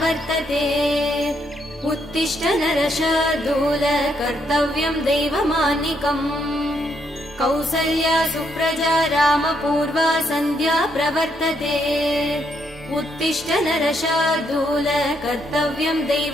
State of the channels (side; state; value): both; normal; correlation 0.75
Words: उत्तिष्ठ नरशार्दूल कर्तव्यं दैवमान्निकम् कौसल्या सुप्रजा रामपूर्वा सन्ध्या प्रवर्तते उत्तिष्ठ नरशार्दूल कर्तव्यं